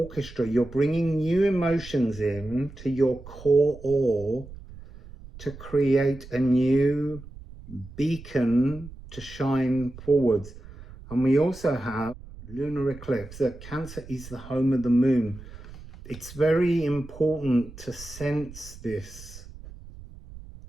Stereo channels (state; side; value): noise; right; rumble, 16 dB below the sound